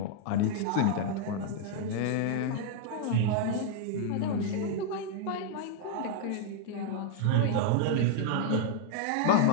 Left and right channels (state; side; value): different; both; correlation 0.00